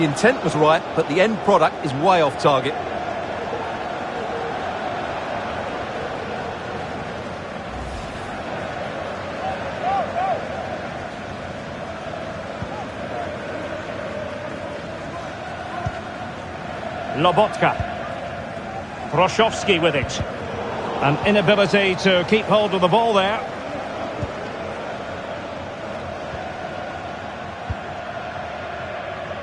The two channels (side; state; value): both; identical; correlation 1.00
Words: intent was right, but the end product is way off target. Lobotka. Froshovski with it. An inability to keep hold of the ball there.